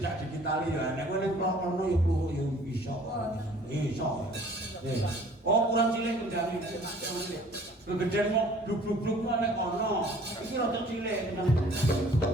digitali ya. Nek kowe ning klono ya pluhuk ya iso. Iso. Oh, kurang cilik kendari. Gegeden mau bluk-bluk nek ono. Iki rada cilik. Nah,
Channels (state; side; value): normal; both; correlation 0.53